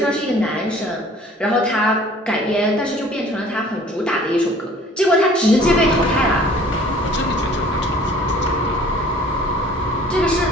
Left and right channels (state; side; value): normal; both; correlation 0.51